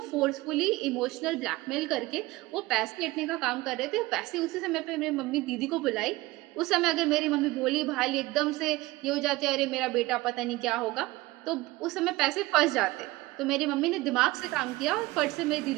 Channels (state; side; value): quieter; left; 20.1 dB